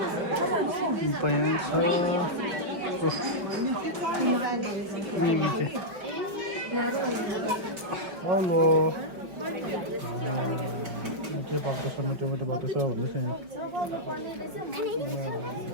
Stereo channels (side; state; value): left; late; 5.2 ms